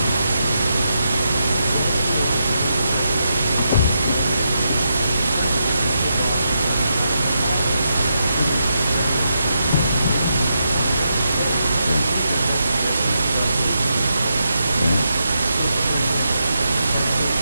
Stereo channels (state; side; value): inverted; both; correlation -0.84